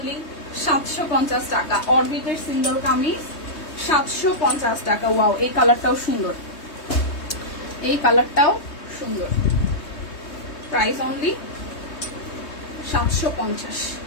750 টাকা। অরবিটের সিঙ্গেল কামিজ 750 টাকা। ওয়াও, এই কালারটাও সুন্দর, এই কালারটাও সুন্দর। প্রাইস অনলি 750,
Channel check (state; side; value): late; right; 3.2 ms